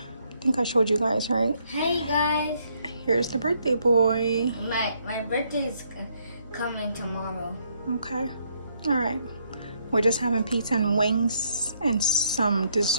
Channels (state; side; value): inverted; both; correlation -0.72